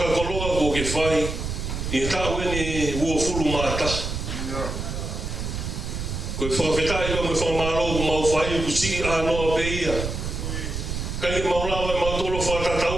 ko ke whai, I he tau ene ua furu mātaha. Koe whakawhitai pa mo whakamālo ko mau whai ku siki ānoa pe ia. Kai ke maulawa e mautolo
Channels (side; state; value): right; noise; rumble, 4 dB below the sound